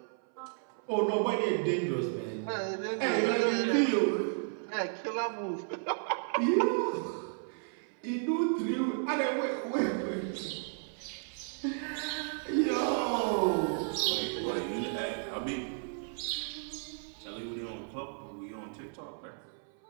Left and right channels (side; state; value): left; silent; 56 dB below the other